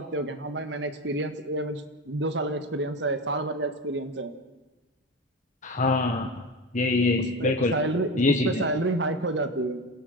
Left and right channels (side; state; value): both; normal; correlation 0.24